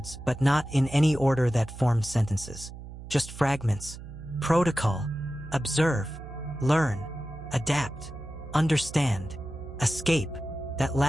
but not in any order that formed sentences. Just fragments. Protocol. Observe. Learn. Adapt. Understand. Escape. That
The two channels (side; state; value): right; noise; hum, 13 dB below the sound